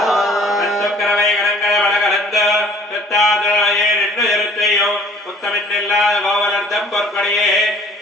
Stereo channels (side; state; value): both; normal; correlation 0.53